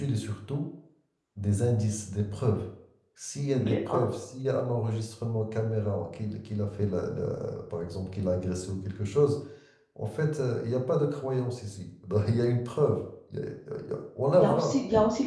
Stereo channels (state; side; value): identical; both; correlation 1.00